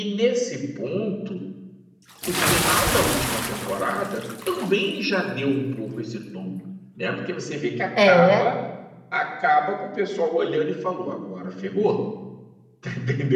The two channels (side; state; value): both; identical; correlation 1.00